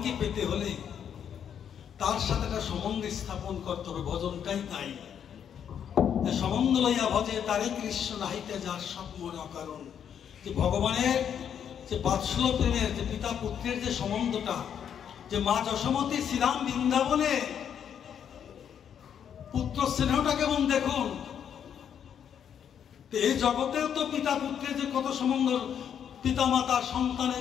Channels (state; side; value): quieter; right; 8.5 dB